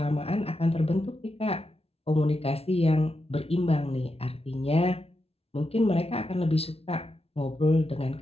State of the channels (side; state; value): right; late; 0.29 ms